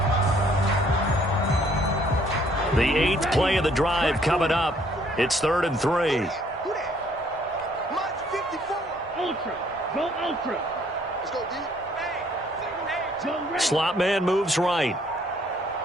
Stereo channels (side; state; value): both; normal; correlation 0.63